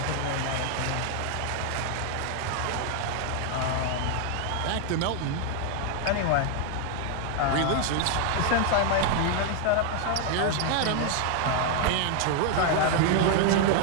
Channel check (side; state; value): both; different; correlation 0.00